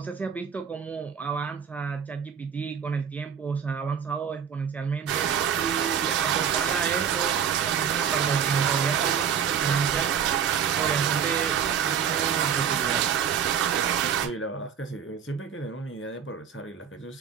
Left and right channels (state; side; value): quieter; left; 7.9 dB